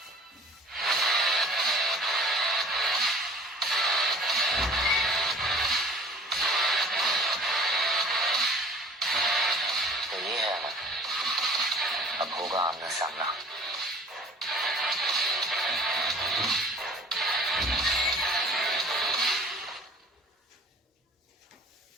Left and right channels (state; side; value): normal; both; correlation 0.48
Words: अब होगा आमना सामना।